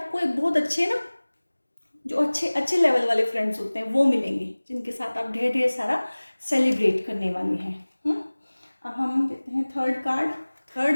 एक बहुत अच्छे ना, जो अच्छे अच्छे लेवल वाले फ्रेंड्स होते हैं वो मिलेंगे, जिनके साथ आप ढेर ढेर सारा सेलिब्रेट करने वाले हैं। अब हम देते हैं third card.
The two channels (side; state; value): both; inverted; correlation -1.00